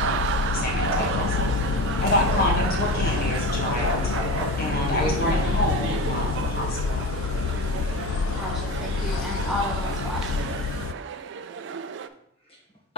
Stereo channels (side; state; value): both; normal; correlation 0.29